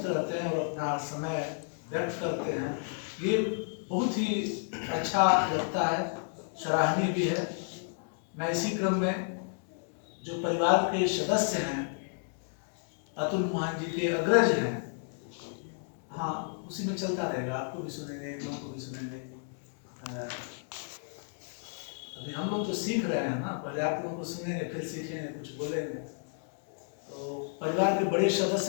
रहते हैं और अपना समय व्यक्त करते हैं। ये बहुत ही अच्छा लगता है, सराहनीय भी है। मैं इसी क्रम में जो परिवार के सदस्य हैं, अतुल मोहन जी के अग्रज हैं, हाँ उसी में चलता रहेगा, आपको भी सुनेंगे, इन लोगों को भी सुनेंगे। अभी हम लोग तो सीख रहे हैं ना, पहले आप लोगों को सुनेंगे फिर सीखेंगे, कुछ बोलेंगे। तो परिवार के बड़े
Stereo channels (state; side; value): silent; right; 56 dB below the other